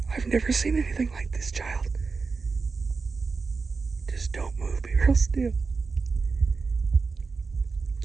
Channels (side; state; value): left; quieter; 4.5 dB